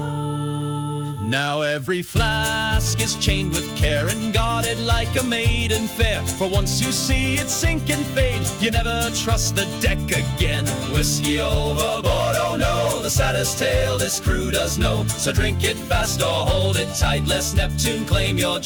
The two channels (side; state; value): both; identical; correlation 1.00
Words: Now every flask is chained with care and guarded like a maiden fair. For once you see it sink and fade, you never trust the deck again. Whiskey overboard, oh no, the saddest tale this crew does know. So drink it fast or hold it tight, lest Neptune claim your